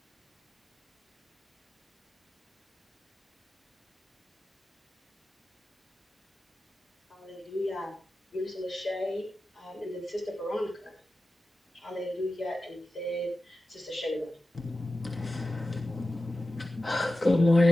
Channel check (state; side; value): normal; both; correlation 0.94